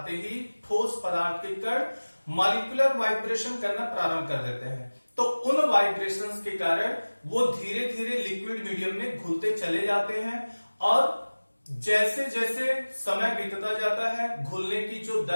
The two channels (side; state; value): both; inverted; correlation -1.00